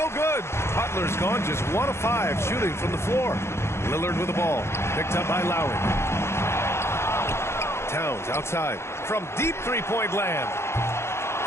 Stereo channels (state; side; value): late; right; 0.13 ms